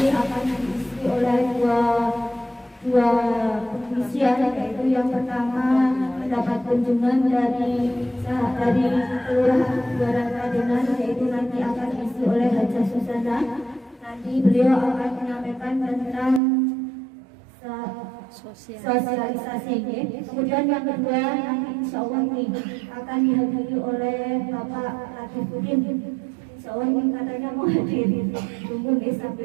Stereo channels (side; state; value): left; drops out; at 16.4 s